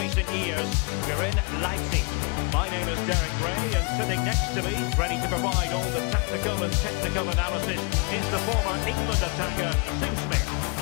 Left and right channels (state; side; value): quieter; right; 33.6 dB